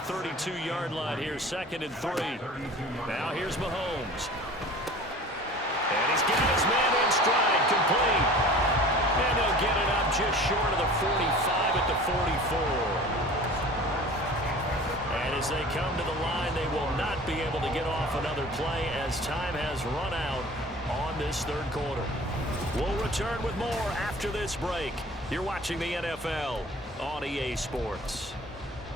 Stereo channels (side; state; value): both; normal; correlation 0.43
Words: 32-yard line here, 2nd and 3. Now here's Mahomes. And he's got his man in stride, complete. And they'll get it up just short of the 45 at the 44. And as they come to the line, they will not be able to get off another play as time has run out on this third quarter. We'll return with more after this break. You're watching the NFL on EA Sports.